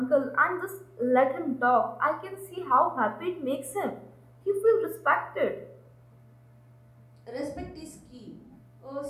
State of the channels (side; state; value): both; identical; correlation 1.00